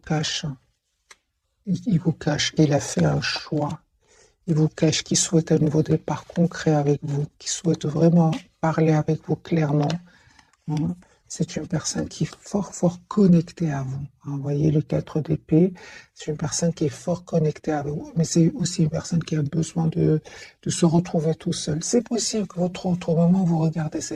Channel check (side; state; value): both; identical; correlation 1.00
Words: Il vous cache qu'il a fait un choix. Il vous cache qu'il souhaite un nouveau départ concret avec vous, qu'il souhaite vraiment parler avec vous clairement. C'est une personne qui est fort connectée à vous. Vous voyez le 4 d'épée, c'est une personne qui est fort connectée à vous, mais c'est aussi une personne qui a besoin de se retrouver tout seul. C'est possible que votre autre, au moment où vous regardez